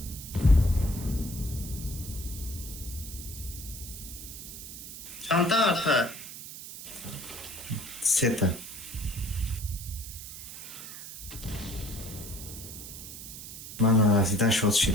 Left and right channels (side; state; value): right; noise; hiss, 11 dB below the sound